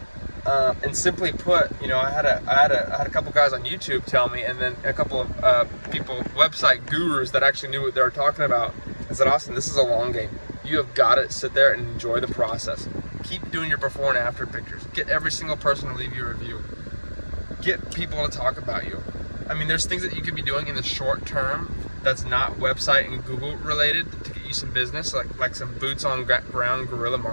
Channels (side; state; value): both; inverted; correlation -1.00